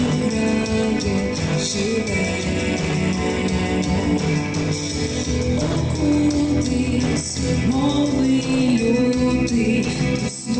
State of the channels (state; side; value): identical; both; correlation 1.00